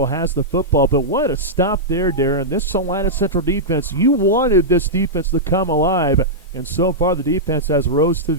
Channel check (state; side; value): normal; both; correlation -0.10